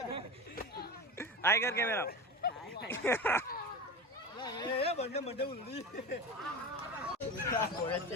હાઈ કર કેમેરા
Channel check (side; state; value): both; normal; correlation 0.27